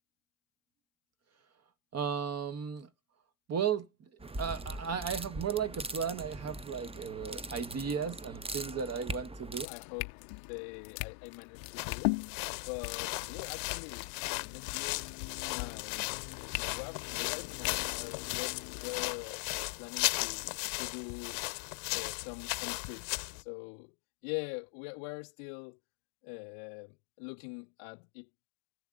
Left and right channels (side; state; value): right; drops out; at 9.7 s